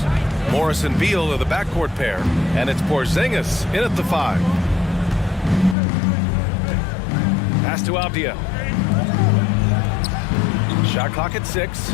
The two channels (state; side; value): drops out; right; at 5.8 s